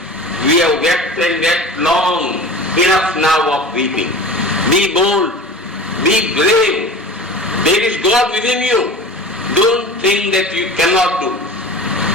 we have wept and wept long, enough now of weeping. Be bold, be brave. There is God within you. Don't think that you cannot do.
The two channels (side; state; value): both; normal; correlation 0.36